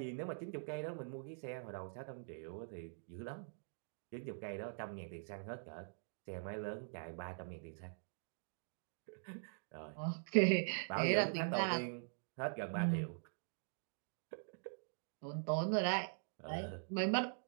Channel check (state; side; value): silent; left; digital silence